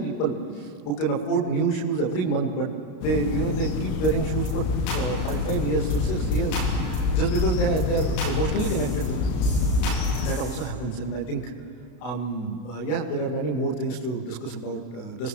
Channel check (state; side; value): late; right; 34 ms